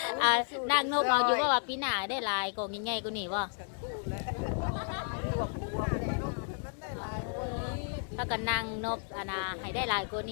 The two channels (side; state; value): right; silent; 56 dB below the other